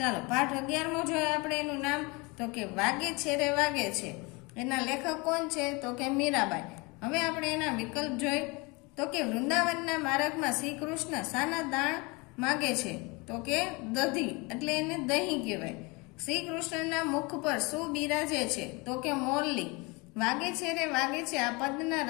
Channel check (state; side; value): quieter; right; 27.3 dB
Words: પાઠ 11મો જોઈએ આપણે. એનું નામ તો કે વાગે છે રે વાગે છે. એના લેખક કોણ છે? તો કે મીરાબાઈ. હવે આપણે એના વિકલ્પ જોઈ તો કે વૃંદાવનના માર્ગમાં શ્રી કૃષ્ણ શાના દાણ માગે છે? તો કે દધી, એટલે એને દહીં કહેવાય. શ્રી કૃષ્ણના મુખ પર શું બિરાજે છે? તો કે મોરલી. વાગે છે રે વાગે છે આ પદના